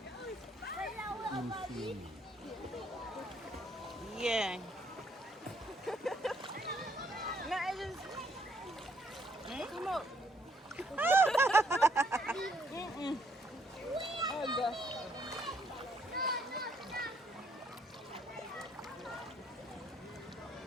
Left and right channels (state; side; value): normal; both; correlation 0.69